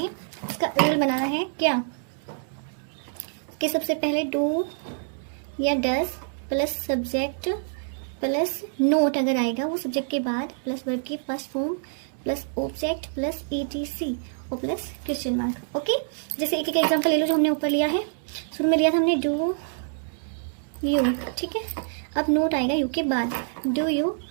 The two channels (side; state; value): left; silent; digital silence